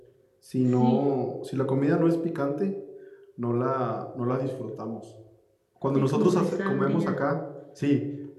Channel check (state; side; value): identical; both; correlation 1.00